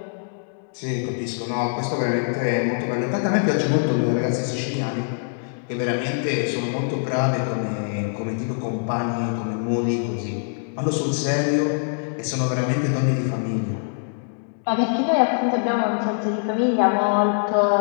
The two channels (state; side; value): silent; right; digital silence